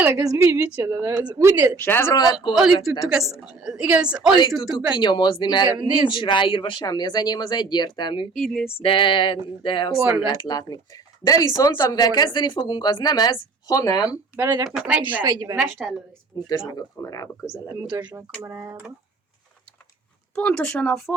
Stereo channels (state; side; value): quieter; left; 4.1 dB